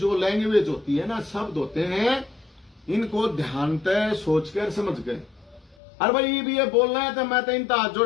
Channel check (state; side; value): drops out; right; at 5.8 s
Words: लैंग्वेज होती है ना, शब्द होते हैं, इनको ध्यान से सोचकर समझ गए। अरे भाई भी ये बोलना है तो मैं तो इनका हाथ